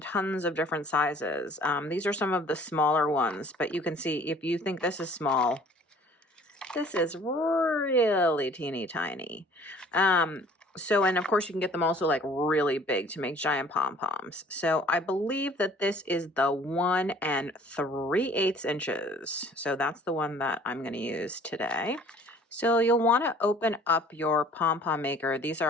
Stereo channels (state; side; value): normal; both; correlation 0.53